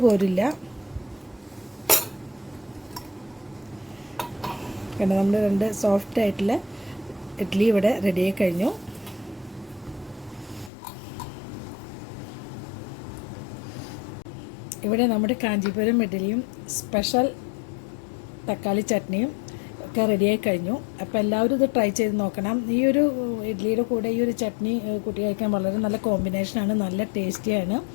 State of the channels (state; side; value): drops out; right; at 10.7 s